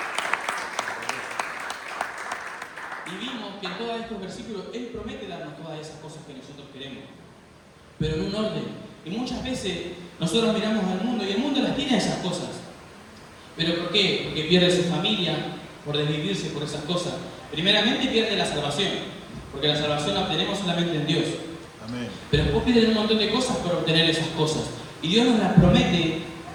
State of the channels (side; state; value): both; identical; correlation 1.00